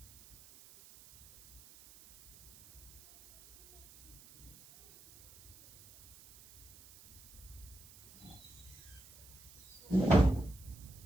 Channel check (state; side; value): noise; right; hiss, 21 dB below the sound